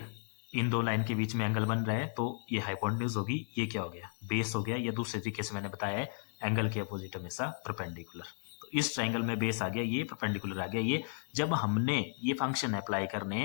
इन 2 लाइन के बीच में एंगल बन रहा है तो ये हाइपोटेन्यूज होगी, ये क्या हो गया, बेस हो गया। या दूसरे तरीके से मैंने बताया है एंगल के अपोजिट हमेशा परपेंडिकुलर। तो इस ट्राइंगल में बेस आ गया, ये परपेंडिकुलर आ गया ये, जब हमने ये फंक्शन अप्लाई करने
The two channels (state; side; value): silent; right; 55 dB below the other